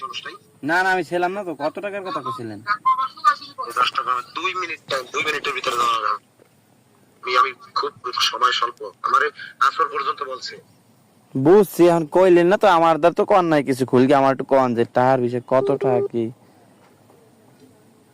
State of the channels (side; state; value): both; identical; correlation 1.00